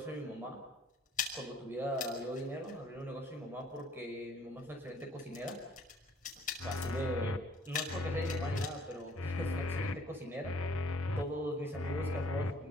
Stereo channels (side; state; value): both; normal; correlation 0.59